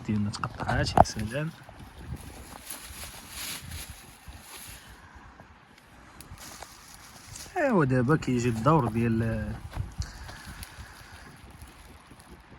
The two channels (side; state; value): both; identical; correlation 1.00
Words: ديالنا تقطعات. يا سلام. ايوا دابا كيجي الدور ديال